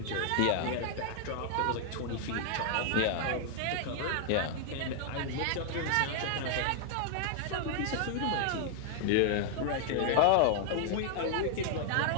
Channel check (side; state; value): both; different; correlation 0.00